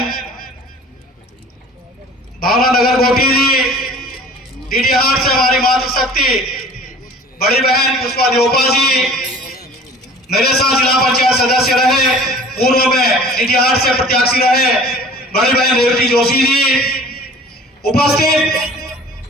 भावना नगर गोटी जी, डीडीहाट से हमारी मातृशक्ति बड़ी बहन पुष्पा देवपा जी, मेरे साथ जिला पंचायत सदस्य रहे पूर्व में डीडीहाट से प्रत्याशी रहे बड़ी बहन रेवती जोशी जी, उपस्थित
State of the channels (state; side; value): normal; both; correlation 0.46